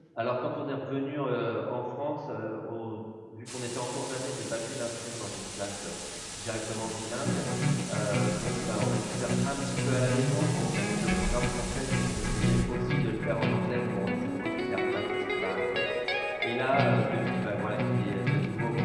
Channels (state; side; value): identical; both; correlation 1.00